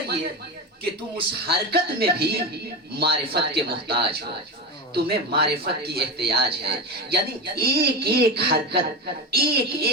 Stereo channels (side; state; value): both; normal; correlation 0.19